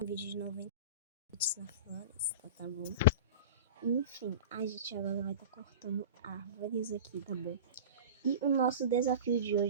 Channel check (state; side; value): inverted; both; correlation -0.33